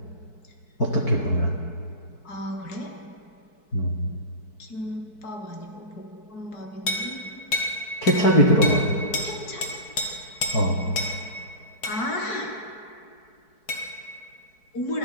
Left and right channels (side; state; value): right; late; 4.6 ms